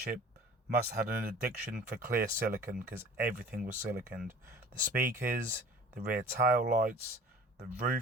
must have had an addiction for clear silicone because everything was siliconed. The speakers, the rear tail lights, the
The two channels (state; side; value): normal; both; correlation 0.45